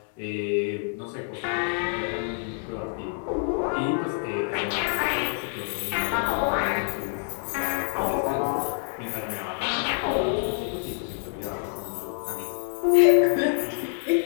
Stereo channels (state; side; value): silent; right; 58 dB below the other